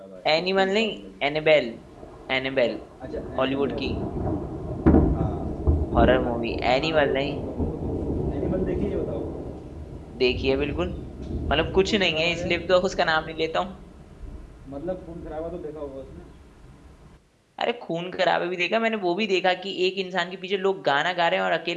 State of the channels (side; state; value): both; identical; correlation 1.00